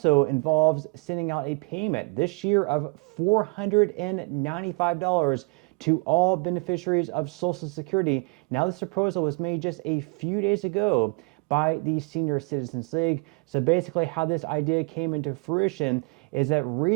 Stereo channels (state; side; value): quieter; left; 32.2 dB